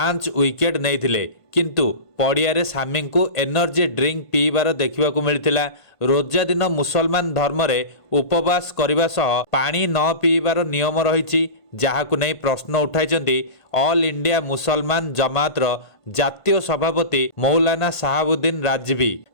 ୱିକେଟ୍ ନେଇଥିଲେ। କିନ୍ତୁ ପଡ଼ିଆରେ ସାମିଙ୍କୁ ଏନର୍ଜି ଡ୍ରିଙ୍କ ପିଇବାର ଦେଖିବାକୁ ମିଳିଥିଲା। ରୋଜା ଦିନ ମୁସଲମାନ ଧର୍ମରେ ଉପବାସ କରିବା ସହ ପାଣି ନ ପିଇବାର ନିୟମ ରହିଛି, ଯାହାକୁ ନେଇ ପ୍ରଶ୍ନ ଉଠାଇଛନ୍ତି ଅଲ୍ ଇଣ୍ଡିଆ ମୁସଲମାନ ଜମାତର ଜାତୀୟ ସଭାପତି ମୌଲାନା ସାହାବୁଦ୍ଦିନ ରାଜଭି।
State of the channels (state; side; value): late; right; 1.5 ms